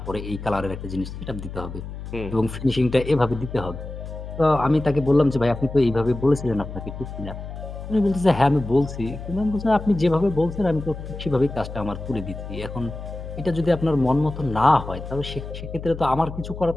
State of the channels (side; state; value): left; noise; hum, 10 dB below the sound